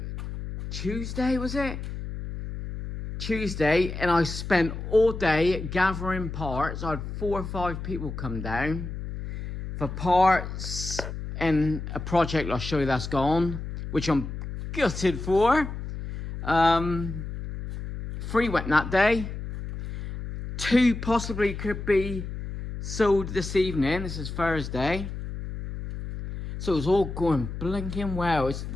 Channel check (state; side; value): noise; left; hum, 7 dB below the sound